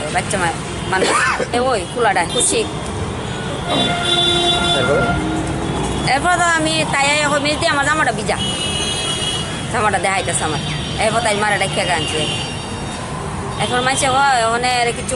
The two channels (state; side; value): identical; both; correlation 1.00